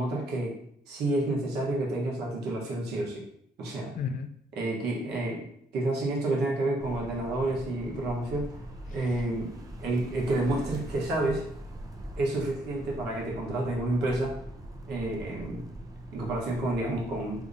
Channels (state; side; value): normal; both; correlation 0.70